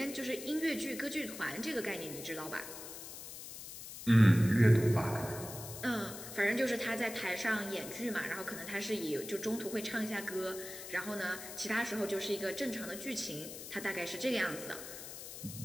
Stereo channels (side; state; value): left; noise; hiss, 11 dB below the sound